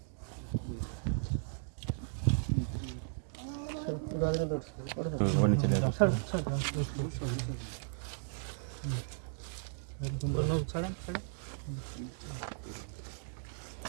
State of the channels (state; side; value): silent; left; digital silence